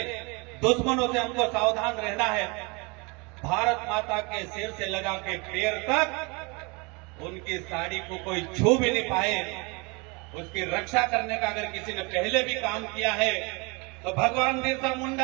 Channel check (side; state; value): left; quieter; 28.8 dB